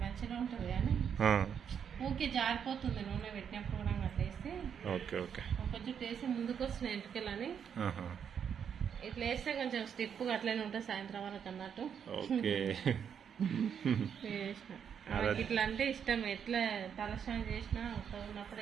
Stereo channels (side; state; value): left; quieter; 7.8 dB